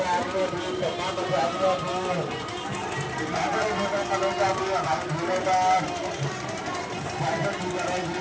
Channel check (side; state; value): both; identical; correlation 1.00